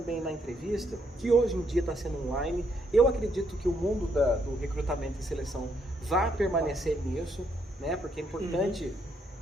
na entrevista, que hoje em dia está sendo online, eu acredito que o mundo do recrutamento e seleção vai permanecer nisso, né? Porque é importante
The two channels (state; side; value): normal; both; correlation 0.74